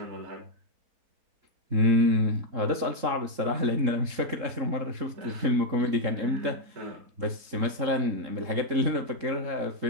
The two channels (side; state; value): left; late; 3.7 ms